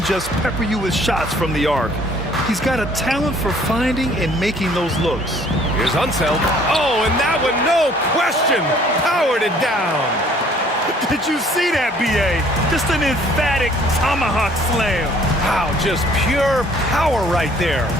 just pepper you with shots from the arc. He's got a talent for finding and making those looks. Here's Unseld. Oh, and that one, no question, powered it down. Did you see that, B.A.? Just an emphatic tomahawk slam. Wow, just pure power right there.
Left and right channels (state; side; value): normal; both; correlation 0.58